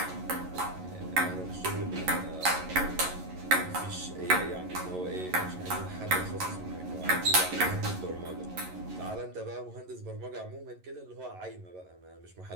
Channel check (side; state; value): left; late; 11 ms